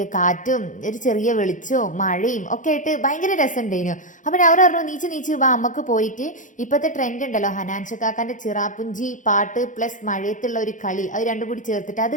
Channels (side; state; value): right; late; 0.37 ms